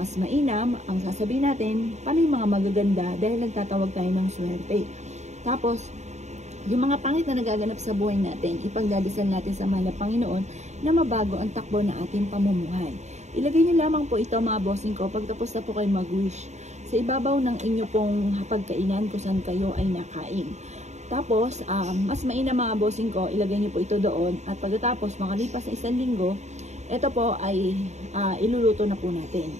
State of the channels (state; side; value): late; left; 0.33 ms